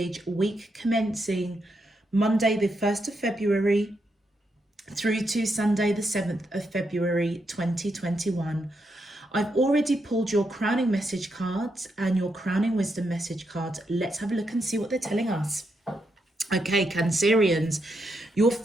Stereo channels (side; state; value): both; normal; correlation 0.81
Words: week commencing Monday, the 1st of February, through to Sunday, the 7th of February, 2021. I've already pulled your crowning message cards and your crowning wisdom message cards. Let's have a look and see what they're telling us. Okay, Cancerians, your